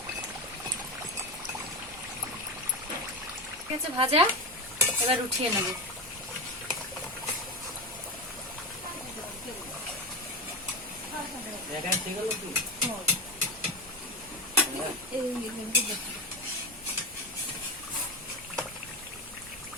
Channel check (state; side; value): noise; right; hum, 23 dB below the sound